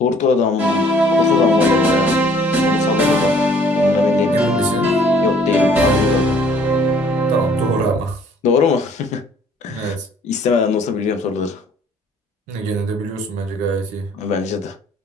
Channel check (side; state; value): both; normal; correlation 0.58